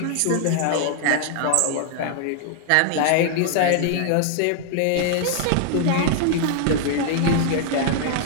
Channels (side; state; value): both; different; correlation 0.00